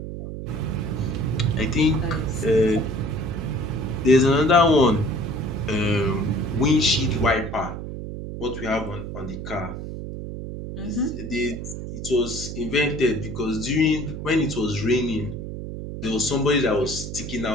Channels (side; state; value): right; noise; hum, 8 dB below the sound